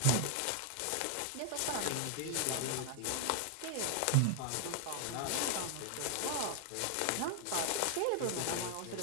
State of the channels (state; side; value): different; both; correlation 0.00